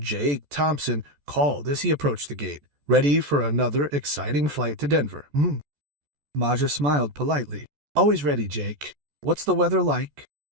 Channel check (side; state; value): left; late; 14 ms